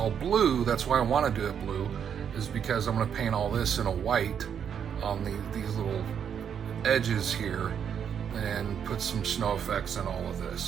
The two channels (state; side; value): quieter; left; 8.0 dB